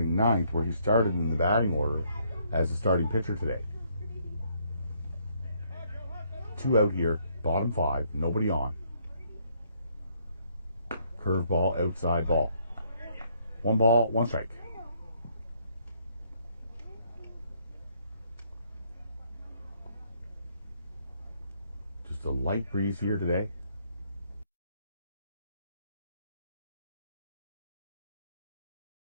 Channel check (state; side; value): inverted; both; correlation -0.69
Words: 9th, where he started in the batting order as the starting pitcher today. 2 out here, bottom 5, nobody on. Curveball, outside ball. 1 ball, 1 strike. Just a light breeze here today.